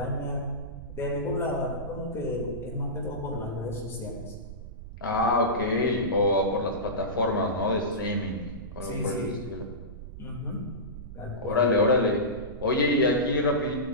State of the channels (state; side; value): noise; right; rumble, 12 dB below the sound